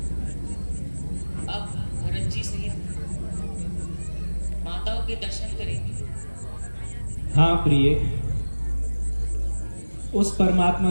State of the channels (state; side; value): inverted; both; correlation -1.00